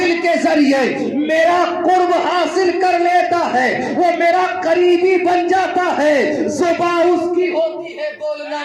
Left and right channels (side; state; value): both; identical; correlation 1.00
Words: کے ذریعے میرا قرب حاصل کر لیتا ہے، وہ میرا قریبی بن جاتا ہے۔ زبان اس کی ہوتی ہے، بولنا